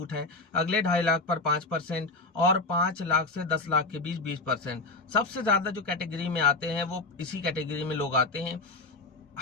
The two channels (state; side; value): quieter; right; 3.4 dB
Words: है, अगले 2.5 लाख पर 5% और 5 लाख से 10 लाख के बीच 20%। सबसे ज्यादा जो कैटेगरी में आते हैं वो इसी कैटेगरी में लोग आते हैं।